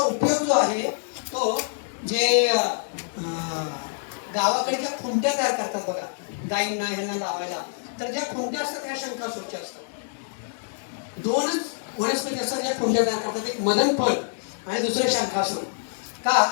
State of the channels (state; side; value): silent; right; digital silence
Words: जो आहे तो जे गावाकडच्या खुंट्या तयार करतात बघा, गायींना ह्यांना लावायला, तर ज्या खुंट्या असतात त्या शंखासूरच्या असतात. 2च वनस्पती असतात ज्या खुंट्या तयार करतात, एक मदन फळ आणि दुसरे शंखासूर. का